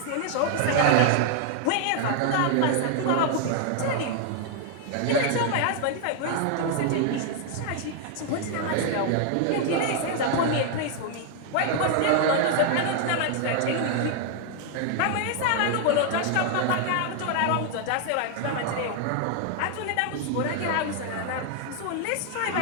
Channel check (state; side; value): different; both; correlation 0.00